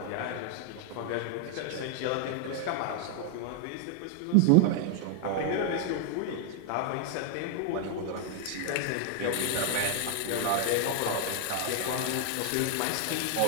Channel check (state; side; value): different; both; correlation 0.00